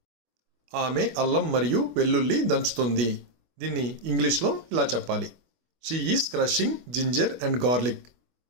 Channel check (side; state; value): left; late; 25 ms